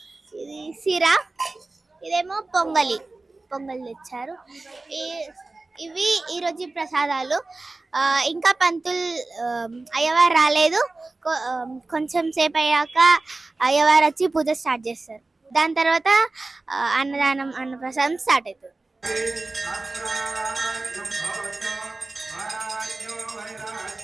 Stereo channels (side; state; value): left; quieter; 3.3 dB